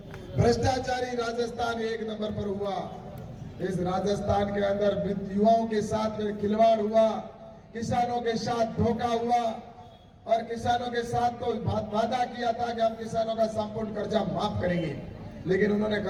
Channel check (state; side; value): identical; both; correlation 1.00